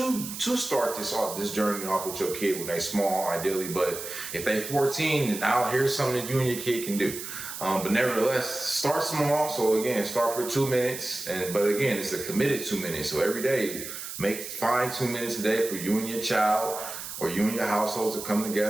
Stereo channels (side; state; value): right; noise; hiss, 9 dB below the sound